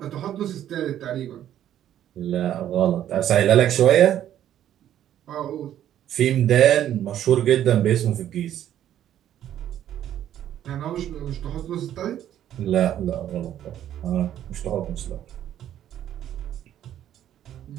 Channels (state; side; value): quieter; left; 11.2 dB